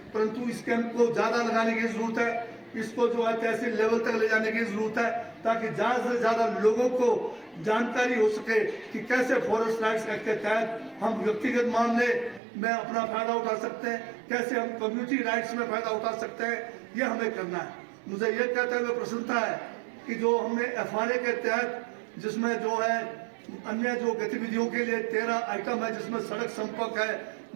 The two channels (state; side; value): drops out; left; at 12.4 s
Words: परंतु इस कैंप को ज्यादा लगाने की जरूरत है। इसको जो है तहसील लेवल तक ले जाने की जरूरत है, ताकि ज्यादा से ज्यादा लोगों को जानकारी हो सके कि कैसे फॉरेस्ट राइट्स एक्ट के तहत हम व्यक्तिगत मामले में अपना फायदा उठा सकते हैं, कैसे हम कम्युनिटी राइट्स में फायदा उठा सकते हैं, ये हमें करना है। मुझे ये कहते हुए प्रसन्नता है कि जो हमने FRA के तहत, जिसमें जो है अन्य जो गतिविधियों के लिए 13 आइटम है, जिसमें सड़क संपर्क है,